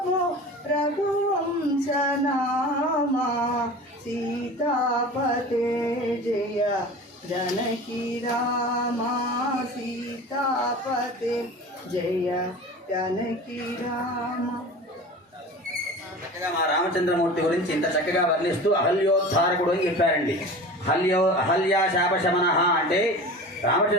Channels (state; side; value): normal; both; correlation 0.36